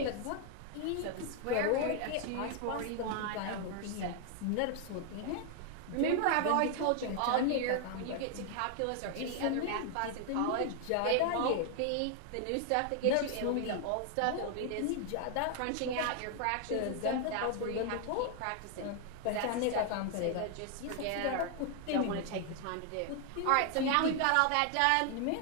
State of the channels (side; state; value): both; different; correlation 0.00